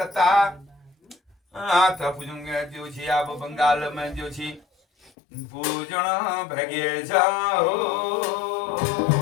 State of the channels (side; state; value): right; drops out; at 5.1 s